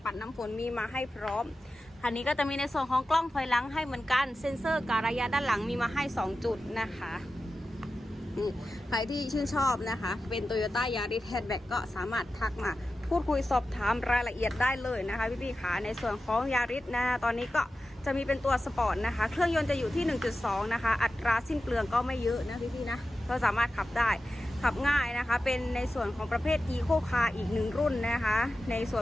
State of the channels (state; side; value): normal; both; correlation 0.93